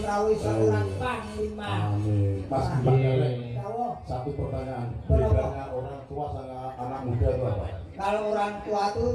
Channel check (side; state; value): both; identical; correlation 1.00